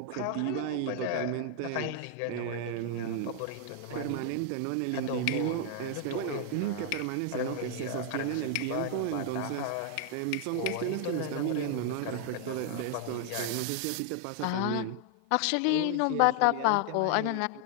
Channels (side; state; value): both; different; correlation 0.00